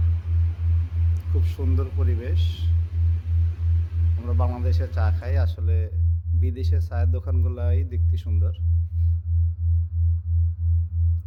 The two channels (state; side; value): identical; both; correlation 1.00